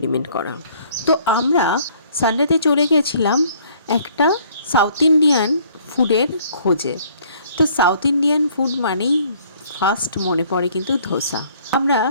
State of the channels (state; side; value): inverted; both; correlation -0.59